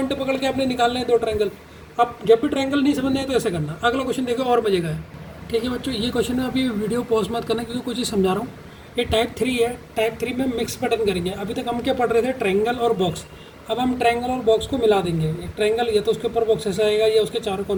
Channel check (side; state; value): both; identical; correlation 1.00